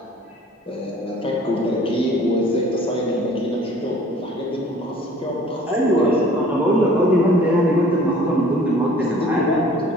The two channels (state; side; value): normal; both; correlation 0.51